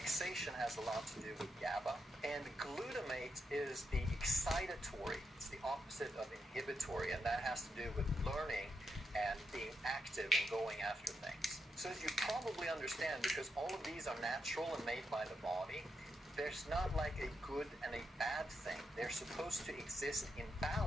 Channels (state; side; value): normal; both; correlation 0.83